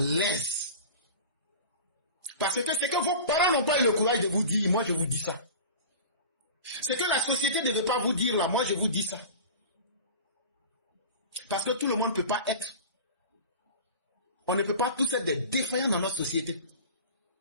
Parce que c'est que vos parents n'ont pas eu le courage de vous dire, moi je vous dis ça. C'est que la société ne veut pas vous dire là, moi je vous dis ça. Parce que tout le monde ne peut pas être. On ne peut pas tous être des défaillants dans notre société.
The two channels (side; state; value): both; inverted; correlation -0.36